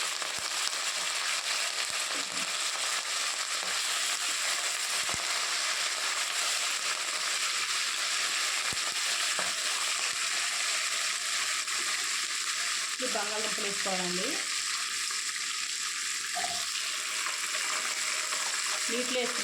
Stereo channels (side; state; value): both; identical; correlation 1.00